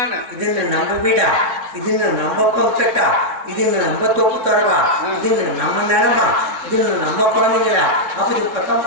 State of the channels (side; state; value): left; late; 3.6 ms